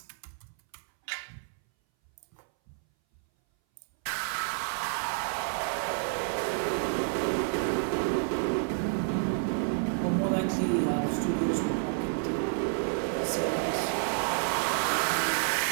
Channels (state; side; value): silent; left; 58 dB below the other